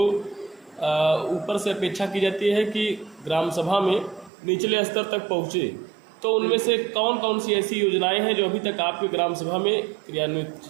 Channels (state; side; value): drops out; left; at 4.3 s